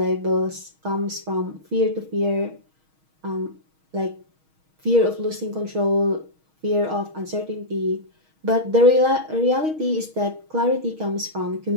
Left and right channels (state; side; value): late; left; 6.4 ms